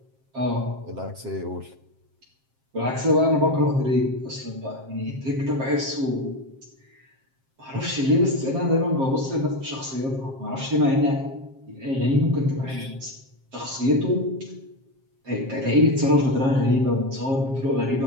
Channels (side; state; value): left; late; 7.5 ms